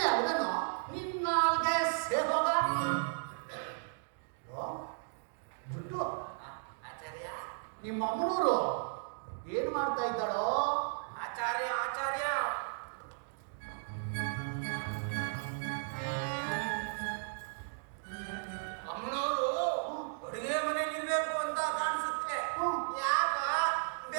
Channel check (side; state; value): left; silent; digital silence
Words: ಅದನ್ನು ನಿನ್ನಾಲ್ಗೆ ಸೇರೋಗ ಜುಟ್ಟು ಆಚಾರ್ಯ. ನಿಮ್ಮ ಅಮ್ಮನೂರು ಏನ್ ಮಾಡ್ತಾ ಇದ್ದಾಳೋ? ಆಚಾರ್ಯ ಆಚಾರ್ಯ ಅಮ್ಮನವರು ಅಡುಗೆ ಮನೆಯಲ್ಲಿ ಇರ್ಬೇಕು ಅಂತ ಕಾಣಿಸುತ್ತೆ. ಯಾಕ